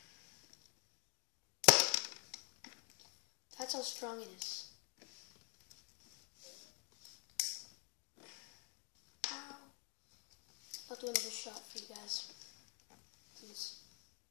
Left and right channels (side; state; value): right; quieter; 37.9 dB